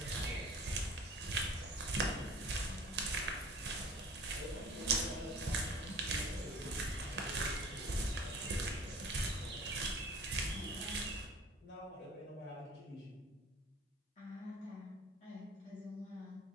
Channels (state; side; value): normal; both; correlation 0.45